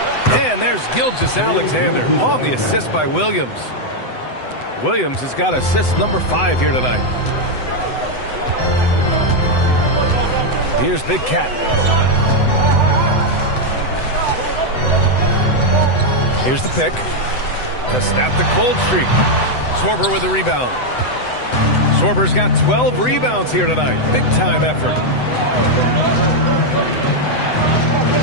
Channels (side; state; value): right; late; 7.9 ms